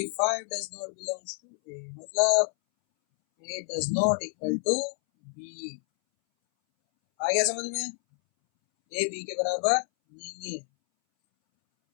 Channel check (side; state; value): right; silent; 59 dB below the other